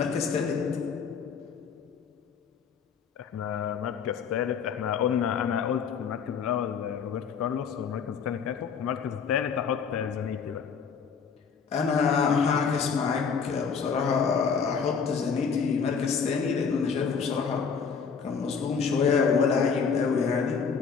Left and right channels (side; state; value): right; quieter; 6.1 dB